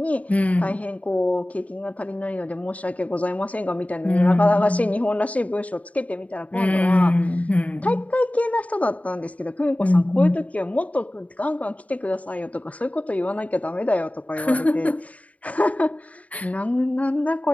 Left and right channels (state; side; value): late; right; 0.069 ms